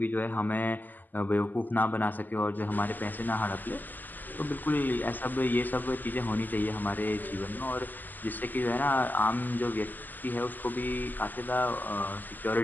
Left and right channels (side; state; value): right; late; 0.086 ms